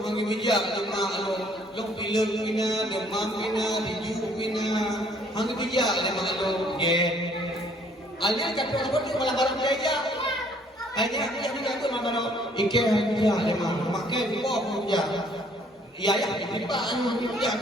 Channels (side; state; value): both; normal; correlation 0.61